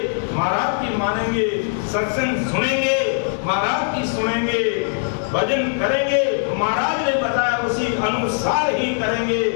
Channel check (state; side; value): silent; right; digital silence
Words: महाराज की मानेंगे, सत्संग सुनेंगे महाराज की सुनेंगे, भजन करेंगे महाराज ने बताया उसी अनुसार ही करेंगे,